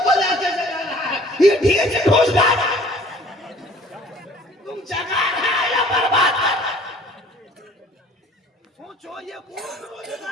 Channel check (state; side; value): normal; both; correlation 0.53